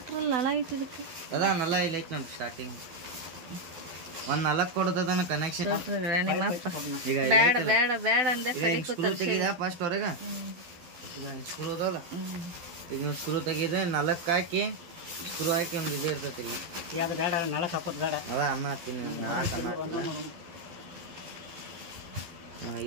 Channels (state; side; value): late; left; 12 ms